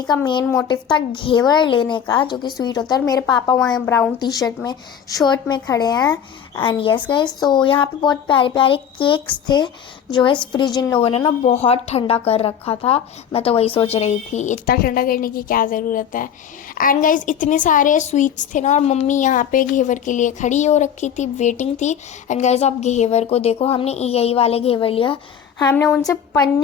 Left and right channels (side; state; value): right; quieter; 8.4 dB